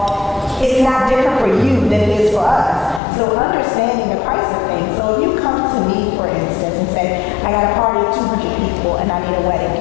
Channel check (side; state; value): right; drops out; at 3.0 s